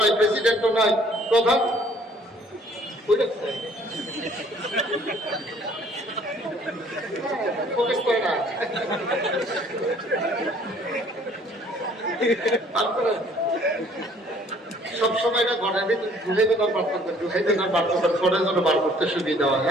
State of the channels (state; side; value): normal; both; correlation 0.58